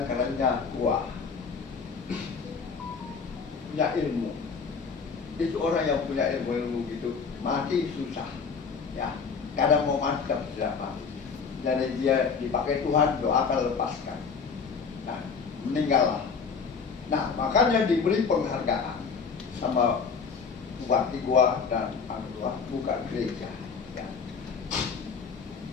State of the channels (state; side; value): quieter; right; 5.6 dB